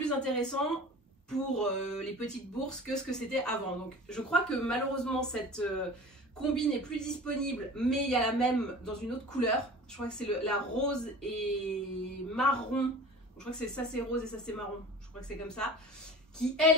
intéressants pour les petites bourses que ce que c'était avant. Donc je crois que malheureusement cette combi n'est plus disponible, mais il y a la même dans une autre couleur. Je crois que c'est la rose et marron. Je crois que c'est ça c'est rose et ça c'est marron. Je crois que c'est comme ça. Qui elle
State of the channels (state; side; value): normal; both; correlation 0.39